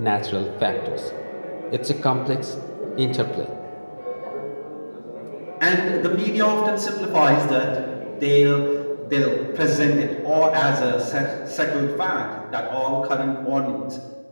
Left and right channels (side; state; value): both; inverted; correlation -1.00